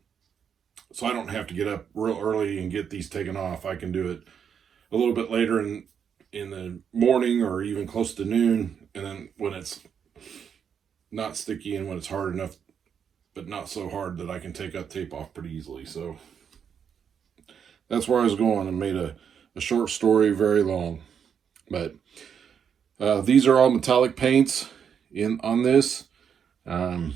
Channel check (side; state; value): left; quieter; 7.6 dB